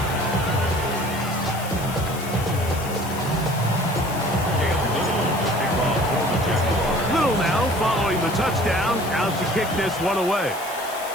Little now following the touchdown, out to kick this one away.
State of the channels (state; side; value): noise; left; hiss, 13 dB below the sound